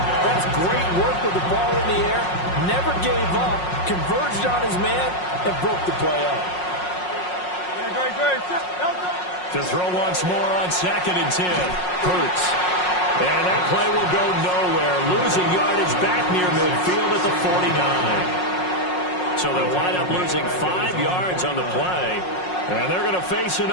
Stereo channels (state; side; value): late; right; 5.5 ms